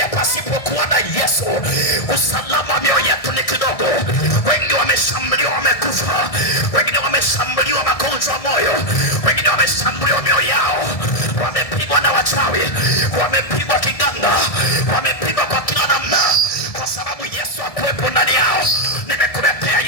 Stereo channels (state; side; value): late; right; 1.7 ms